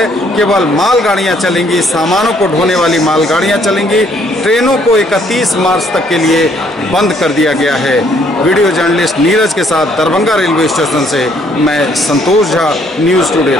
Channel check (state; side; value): normal; both; correlation 0.66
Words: केवल मालगाड़ियां चलेंगी, सामानों को ढोने वाली मालगाड़ियां चलेंगी। ट्रेनों को 31 मार्च तक के लिए बंद कर दिया गया है। वीडियो जर्नलिस्ट नीरज के साथ दरभंगा रेलवे स्टेशन से मैं संतोष झा, न्यूज़ टुडे